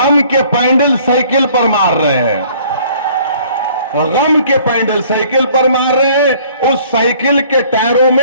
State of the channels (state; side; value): inverted; both; correlation -0.56